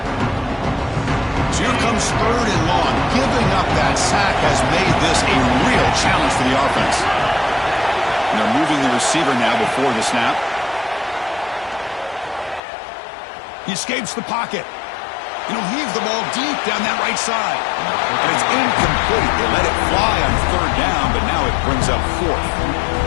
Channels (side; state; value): right; drops out; at 12.6 s